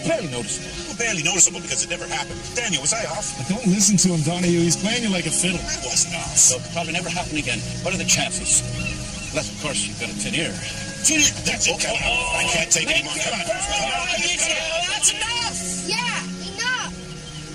barely noticeable. Well, barely noticeable because it never happened. Daniel, was I off? Don't listen to him, Donahue. He's playing you like a fiddle. I wasn't off. So it'll probably never happen again. What are the chances? Unless, of course, you've got a tin ear. Tin ear? That's it. Come on. I can't take any more. Come on. That's enough. Yeah, enough.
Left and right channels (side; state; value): both; identical; correlation 1.00